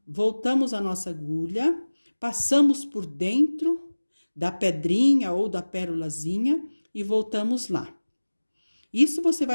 Voltamos a nossa agulha, passamos por dentro da pedrinha ou da pérolazinha e voltamos lá. Isso você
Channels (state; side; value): inverted; both; correlation -1.00